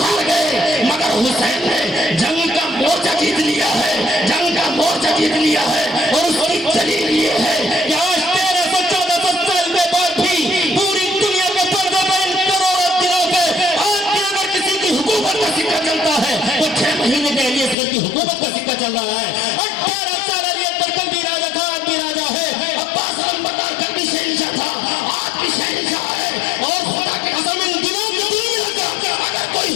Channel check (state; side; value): drops out; right; at 17.8 s